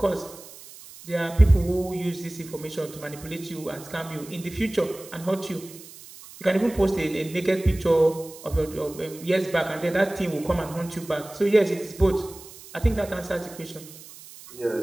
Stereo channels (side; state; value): right; noise; hiss, 18 dB below the sound